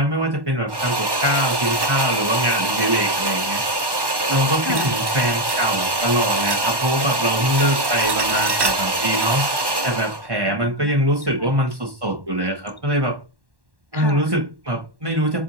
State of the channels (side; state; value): left; late; 1.1 ms